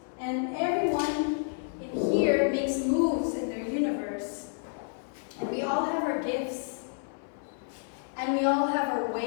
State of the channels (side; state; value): right; silent; 58 dB below the other